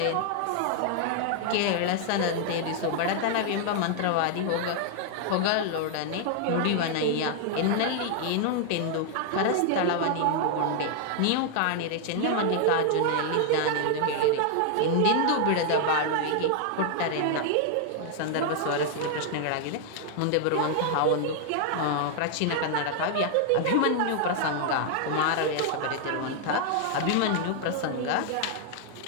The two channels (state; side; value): different; both; correlation 0.00